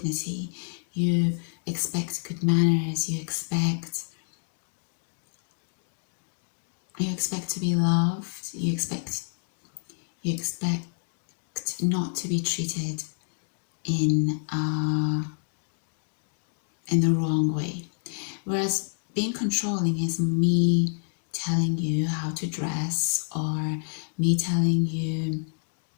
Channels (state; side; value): silent; right; digital silence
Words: You expect good manners. You expect to be loved. You expect not to be treated in the wrong way. Whereas being controlling is me telling you how to dress, or me telling you